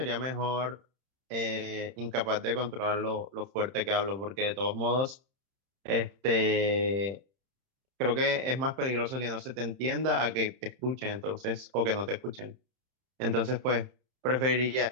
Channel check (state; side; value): late; left; 31 ms